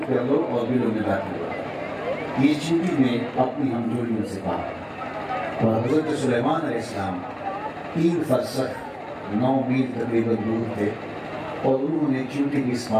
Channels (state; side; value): identical; both; correlation 1.00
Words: کر لو اور دلوں میں داخل ہو۔ یہ چیزیں نے اپنی ہمجولیوں سے کہا، اور حضرت سلیمان علیہ السلام 3 فرسخ 9 میل تقریباً دور تھے، اور انہوں نے چونٹی کی اس